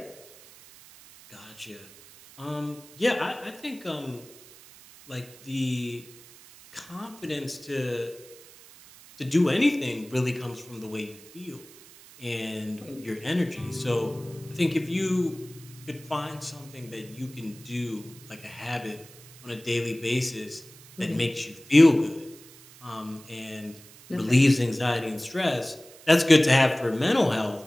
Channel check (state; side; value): noise; right; hiss, 21 dB below the sound